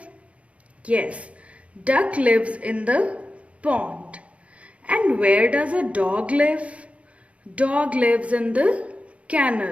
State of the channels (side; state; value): left; late; 0.063 ms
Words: Yes, duck lives in the pond. And where does a dog live? Dog lives in the